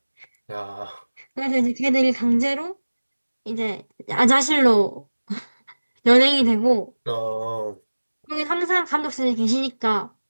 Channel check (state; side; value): inverted; both; correlation -1.00